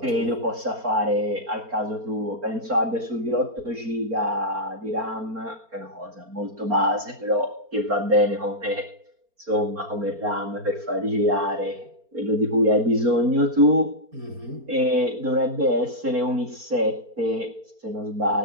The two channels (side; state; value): left; late; 4.4 ms